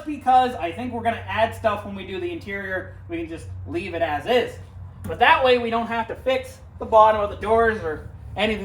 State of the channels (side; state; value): both; identical; correlation 1.00